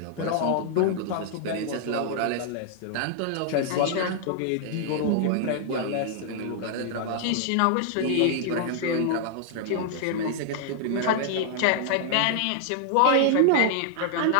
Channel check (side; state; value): both; different; correlation -0.01